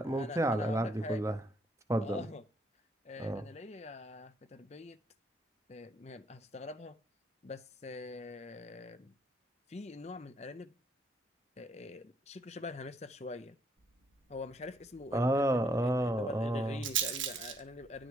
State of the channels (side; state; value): both; normal; correlation 0.69